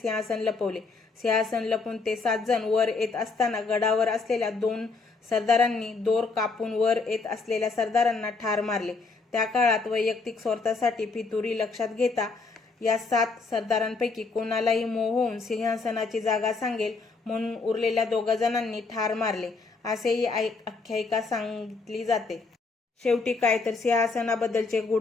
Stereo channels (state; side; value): quieter; right; 4.2 dB